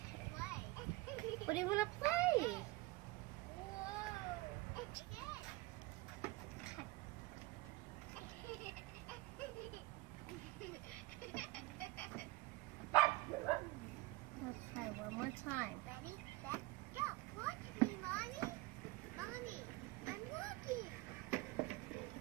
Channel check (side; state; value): left; quieter; 21.0 dB